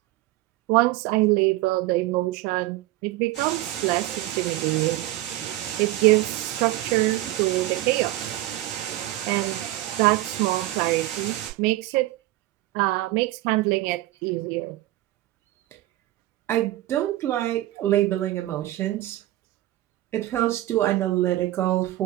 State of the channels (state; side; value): quieter; left; 16.2 dB